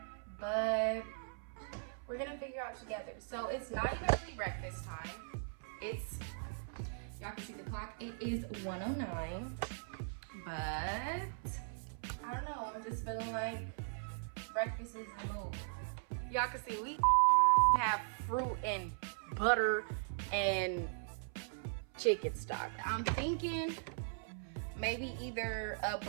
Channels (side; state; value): left; silent; 52 dB below the other